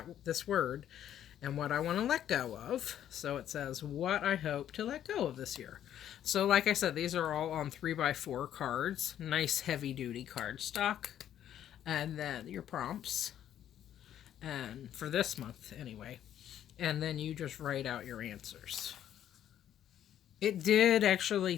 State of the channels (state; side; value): quieter; right; 10.7 dB